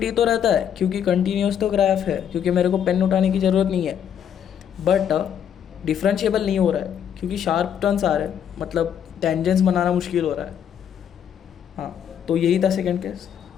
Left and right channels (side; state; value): right; quieter; 8.9 dB